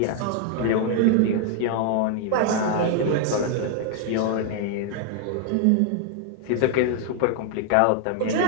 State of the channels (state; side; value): different; both; correlation 0.00